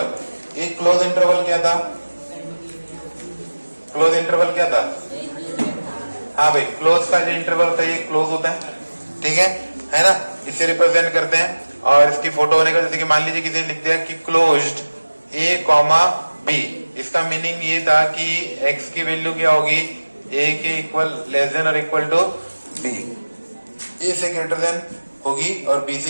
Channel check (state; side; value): inverted; both; correlation -1.00